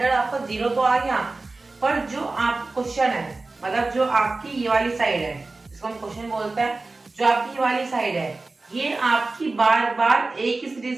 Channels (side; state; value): left; quieter; 3.4 dB